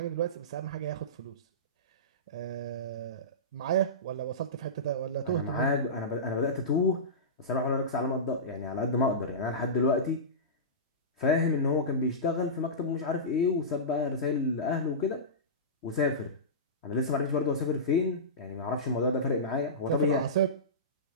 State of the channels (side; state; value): both; normal; correlation -0.19